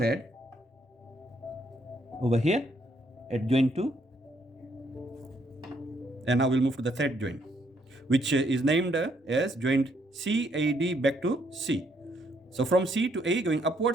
over here at joint 2. And now we'll move to the third joint, which is named as joint CAD back to C. So from C to A going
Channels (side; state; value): both; normal; correlation 0.71